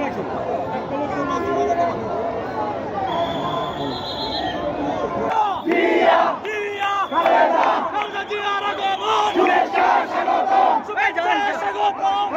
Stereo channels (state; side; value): identical; both; correlation 1.00